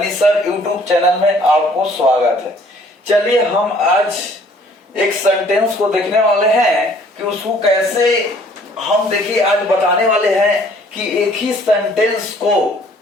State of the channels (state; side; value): normal; both; correlation 0.58